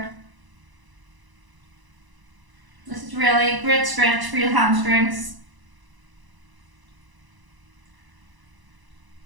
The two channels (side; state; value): left; late; 1.0 ms